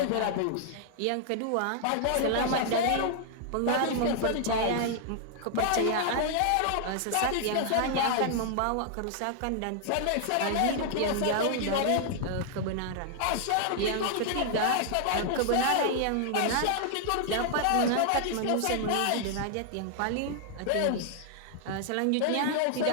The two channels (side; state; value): both; different; correlation 0.00